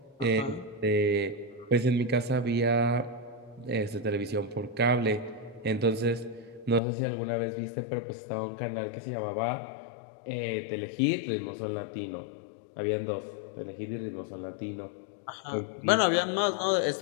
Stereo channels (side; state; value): right; drops out; at 6.8 s